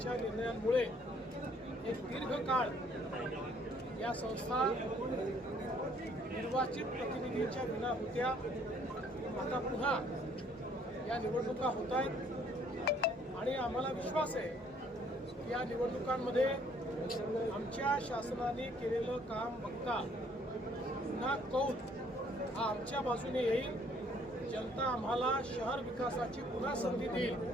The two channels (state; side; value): normal; both; correlation 0.62